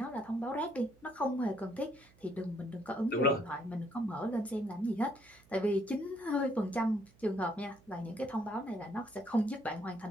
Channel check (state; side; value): noise; right; hum, 27 dB below the sound